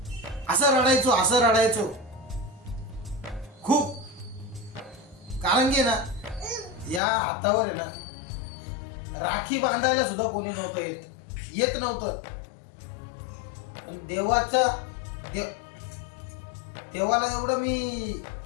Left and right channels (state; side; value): drops out; right; at 7.0 s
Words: असं रडायचो खूप. कारण की ना, या हातावर आहे ना, राखी बांधायला सुद्धा कोणी नव्हतं येत नव्हतं. पण देवाला एवढं मी